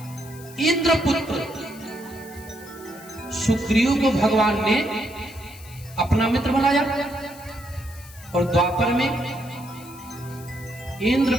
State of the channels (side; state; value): left; noise; hiss, 20 dB below the sound